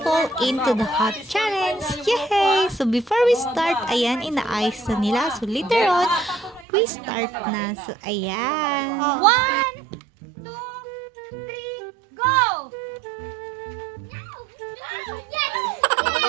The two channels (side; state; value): left; drops out; at 6.7 s